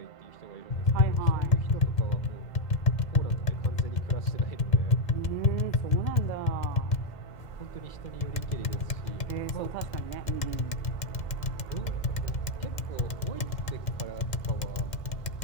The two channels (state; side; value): late; right; 2.1 ms